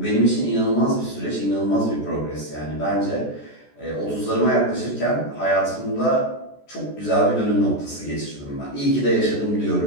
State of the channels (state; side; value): late; right; 14 ms